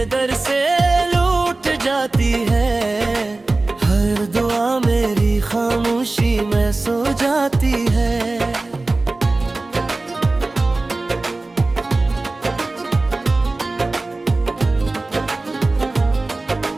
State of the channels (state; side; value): quieter; left; 3.2 dB